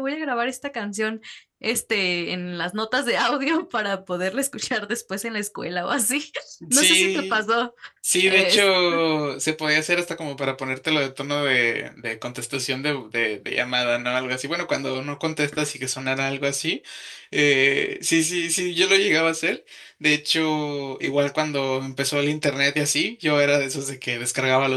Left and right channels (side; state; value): both; identical; correlation 1.00